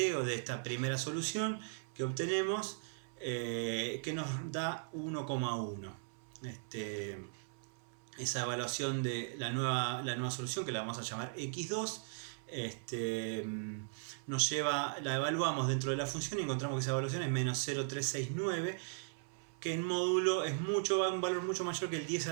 de esta primera solución que obtenemos, que nos da 1,1. Esa evaluación de la nueva solución, que la vamos a llamar x2, la evaluamos dentro de la función y encontramos que esa evaluación es menos 0,369, que en módulo es un valor mucho mayor que el 10 a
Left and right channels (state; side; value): silent; left; 52 dB below the other